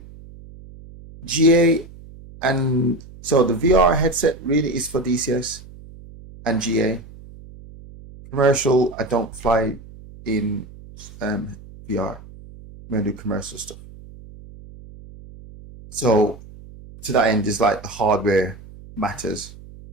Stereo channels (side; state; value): right; noise; hum, 19 dB below the sound